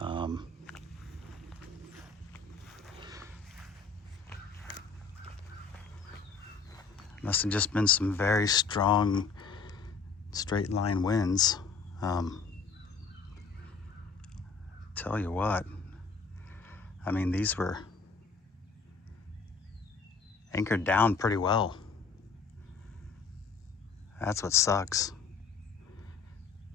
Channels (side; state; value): right; quieter; 4.9 dB